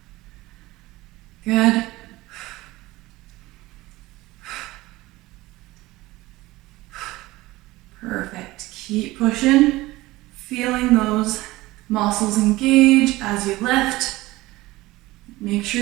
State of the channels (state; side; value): quieter; left; 19.1 dB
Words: good. Perfect. Keep pushing, feeling those muscles engage as you lift. Make